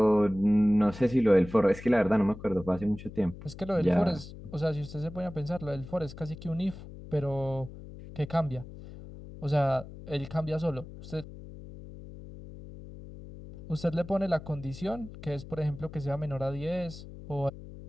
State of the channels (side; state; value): left; noise; hum, 14 dB below the sound